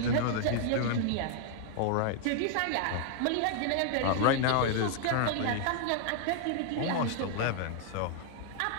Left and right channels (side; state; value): both; different; correlation 0.00